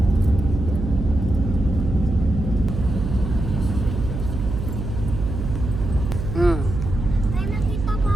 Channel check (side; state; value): right; noise; hum, 5 dB below the sound